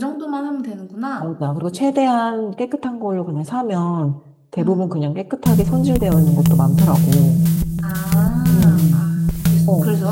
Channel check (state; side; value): identical; both; correlation 1.00